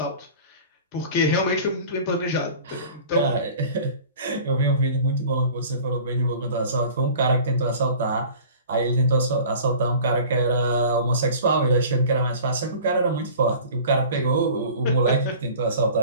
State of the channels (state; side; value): inverted; both; correlation -0.44